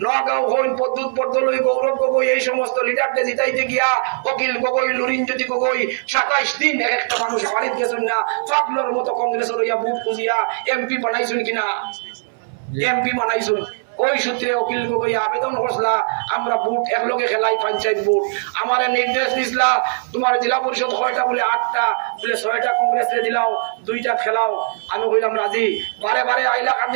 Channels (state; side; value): silent; left; 61 dB below the other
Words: নগাঁও হইন, পদ্মুৎ বরদলৈ, গৌরব গগৈ, এই সমস্ত লিডারদের জিতাইতে গিয়া অকিল গগৈ, লুরিনজ্যোতি গগৈ 27 দিন একটা মানুষ বাড়িতে গেছেন না। ফাগলোর মতো কংগ্রেসের হইয়া বুক খুঁজিয়া এমপি বানাইছেন কিনা? এমপি বানাইছেন। ওই সূত্রে অকিল গগৈ আবেদন করছিলা আমরা বুট একলগে খেলাই, পঞ্চায়েত বুট। আমার নির্দেশ দিছিলা তোমার জেলা পরিষদ হয়টা বলে 8টা, বলে 6টা কংগ্রেসে দিলাও, 2টা খেলাও। আমি কইলাম রাজি। বারে বারে